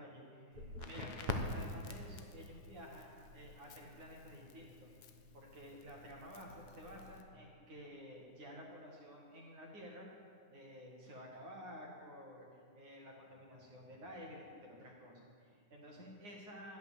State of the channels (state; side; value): late; left; 9.6 ms